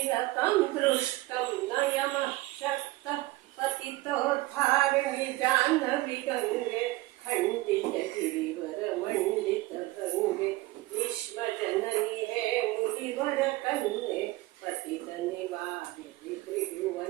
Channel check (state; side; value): quieter; left; 19.4 dB